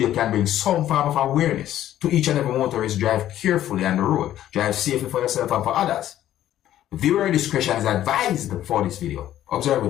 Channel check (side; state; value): right; quieter; 12.4 dB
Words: can bring some form of awareness to each and every motorist. Drive carefully on the road. Drive safely for yourself and for others. Viewer discretion is advised for this video. Observe